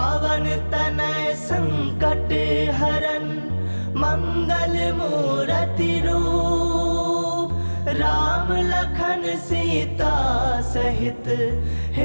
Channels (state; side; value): inverted; both; correlation -1.00